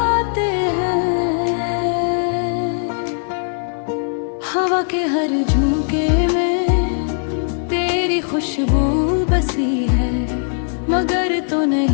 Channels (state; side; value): silent; right; 58 dB below the other